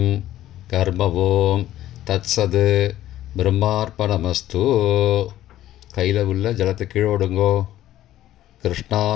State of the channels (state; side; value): quieter; right; 13.5 dB